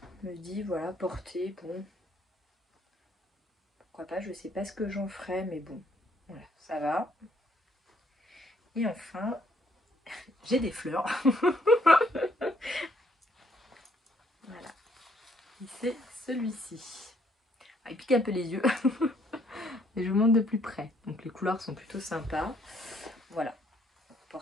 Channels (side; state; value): both; normal; correlation 0.67